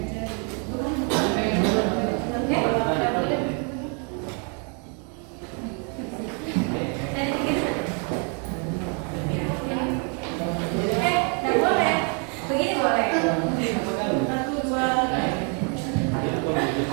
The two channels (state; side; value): quieter; left; 38.4 dB